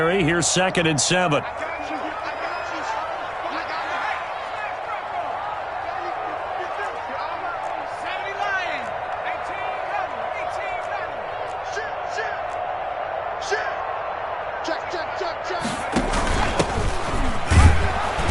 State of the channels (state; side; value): identical; both; correlation 1.00